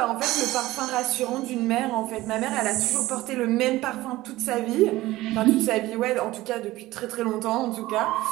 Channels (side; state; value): left; quieter; 17.5 dB